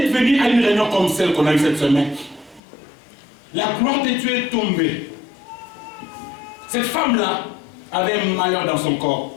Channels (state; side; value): drops out; right; at 2.6 s